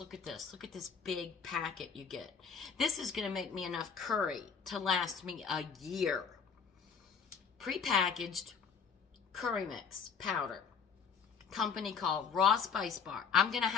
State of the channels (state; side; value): quieter; right; 6.2 dB